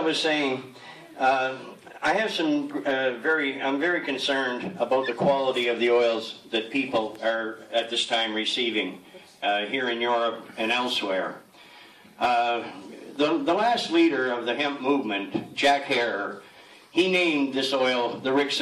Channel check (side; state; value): both; identical; correlation 1.00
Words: saying, I have some I'm very concerned about the quality of the oils that people are at this time receiving here in Europe and elsewhere. The last leader of the hemp movement, Jack Herer, he named this oil the Rick